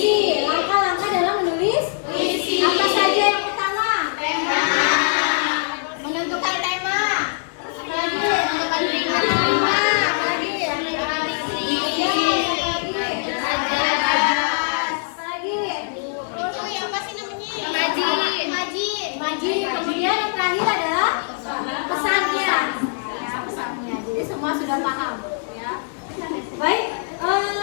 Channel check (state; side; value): silent; right; digital silence